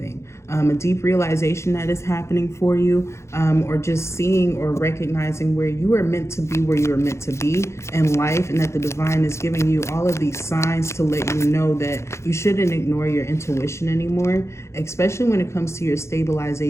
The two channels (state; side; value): late; right; 0.13 ms